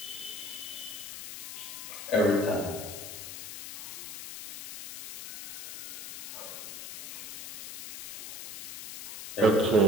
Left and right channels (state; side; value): noise; left; hiss, 10 dB below the sound